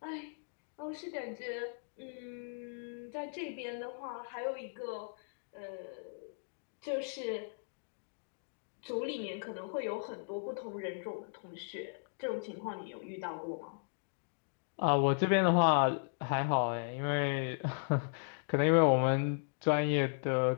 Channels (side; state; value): right; silent; digital silence